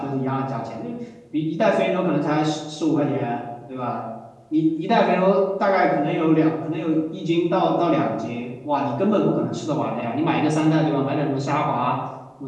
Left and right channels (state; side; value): identical; both; correlation 1.00